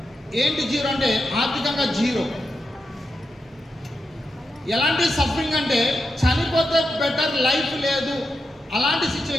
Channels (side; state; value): both; normal; correlation 0.87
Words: ఏంటి జీరో అంటే ఆర్థికంగా జీరో. ఎలాంటి సఫరింగ్ అంటే చనిపోతే బెటర్ లైఫ్ లేదు, అలాంటి